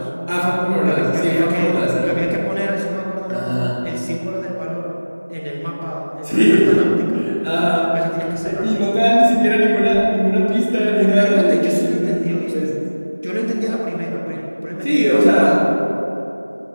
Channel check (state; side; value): inverted; both; correlation -1.00